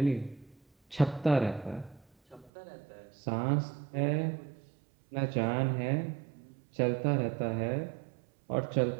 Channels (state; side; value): drops out; left; at 2.5 s